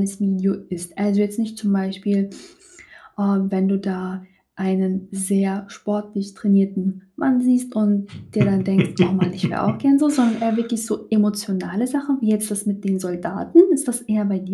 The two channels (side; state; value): both; identical; correlation 1.00